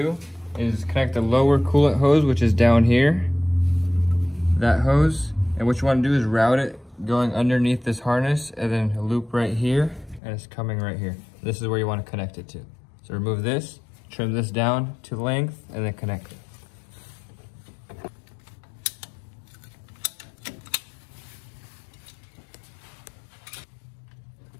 is connect the lower coolant hose, which is down here. That hose, and what you wanna do is route it going underneath this harness and then a loop right here, and it's coming right here. This is where you wanna connect it to. So remove this, trim this down to length, and then connect it.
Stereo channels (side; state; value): right; drops out; at 10.2 s